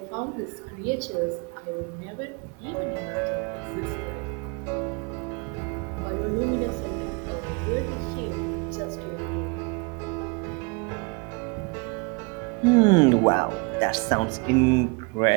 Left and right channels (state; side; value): quieter; left; 30.4 dB